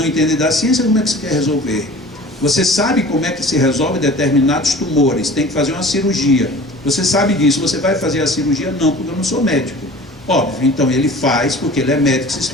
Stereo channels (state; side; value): normal; both; correlation 0.43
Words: entende da ciência, como é que você quer resolver? Você sabe como é que se resolve determinados tumores, tem que fazer uma cirurgia. Você sabe disso, você vai fazer a cirurgia? Não, porque eu não sou médico. Óbvio, então ele faz porque ele é médico, se